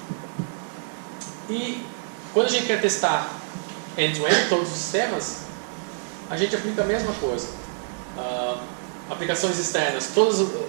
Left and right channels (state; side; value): silent; left; 57 dB below the other